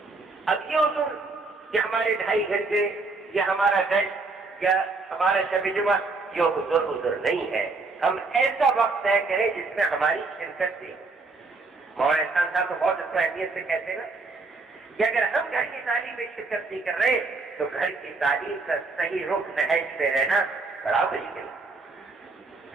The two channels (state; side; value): quieter; left; 3.7 dB